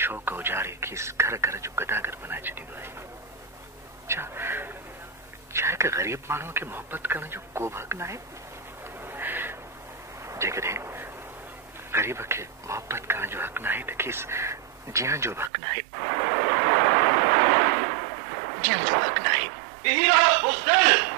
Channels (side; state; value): left; drops out; at 15.5 s